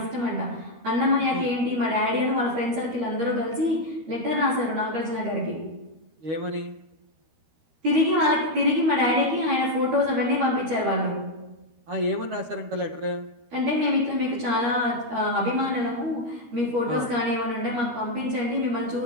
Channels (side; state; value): left; late; 13 ms